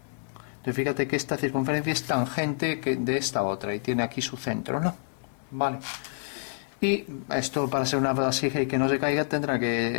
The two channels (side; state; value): right; silent; digital silence